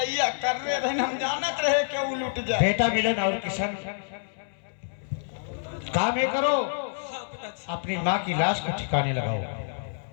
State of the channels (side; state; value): right; silent; 60 dB below the other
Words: कर रहे थे, हम जानत रहे कि वो लुट जाए। बेटा मिलन और किशन, काम ये करो, अपनी माँ की लाश को ठिकाने लगाओ।